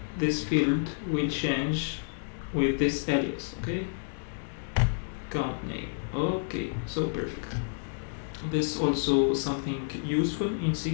this field will change with this alias. Okay, count name. Okay, so perfect. This also something useful in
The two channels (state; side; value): silent; right; 58 dB below the other